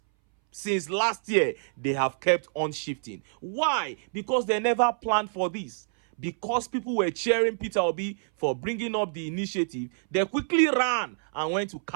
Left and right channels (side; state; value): left; silent; 60 dB below the other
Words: Since last year, they have kept on shifting. Why? Because they never planned for this. Because people were cheering Peter Obi for bringing up the initiative, they quickly ran and went to